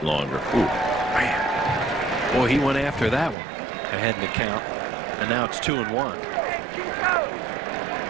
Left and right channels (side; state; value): left; drops out; at 3.4 s